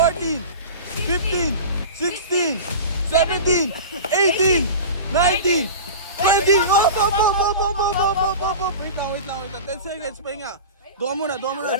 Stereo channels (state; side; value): inverted; both; correlation -0.32